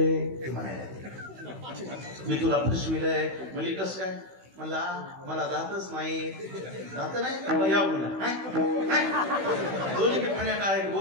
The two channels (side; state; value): left; late; 16 ms